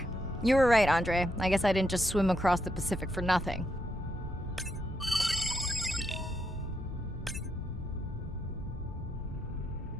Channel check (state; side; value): normal; both; correlation 0.80